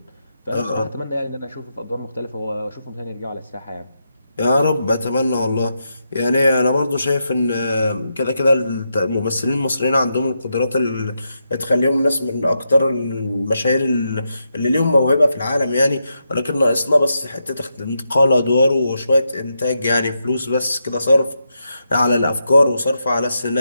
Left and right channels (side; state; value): both; inverted; correlation -0.85